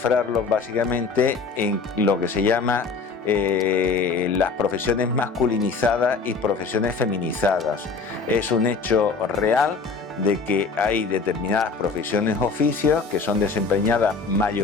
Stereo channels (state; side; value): quieter; right; 4.7 dB